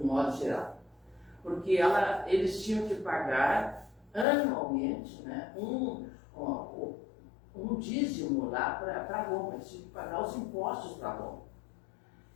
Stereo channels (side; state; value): right; drops out; at 4.2 s